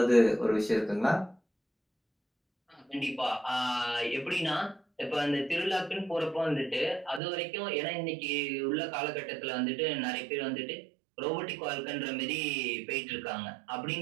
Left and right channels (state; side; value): drops out; left; at 7.2 s